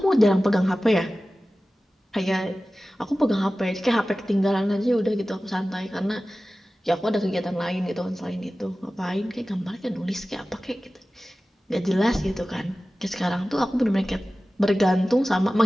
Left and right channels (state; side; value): normal; both; correlation 0.96